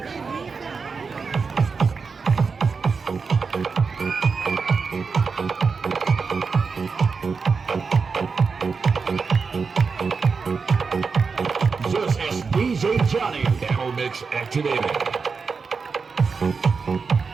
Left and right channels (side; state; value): left; quieter; 5.0 dB